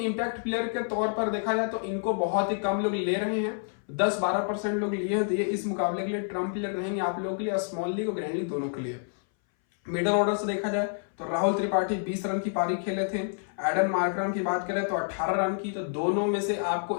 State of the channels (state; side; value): silent; right; 59 dB below the other